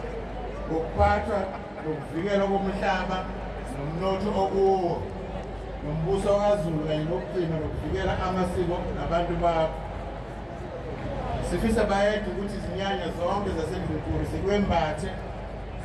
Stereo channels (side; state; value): both; identical; correlation 1.00